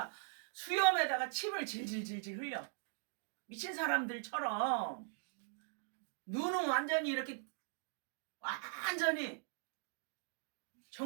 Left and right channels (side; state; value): left; silent; digital silence